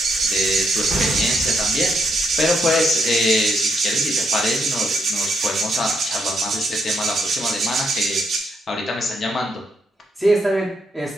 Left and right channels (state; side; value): normal; both; correlation 0.77